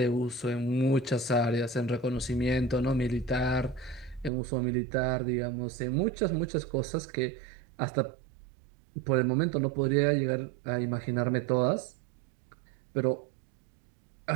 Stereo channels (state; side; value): drops out; left; at 4.3 s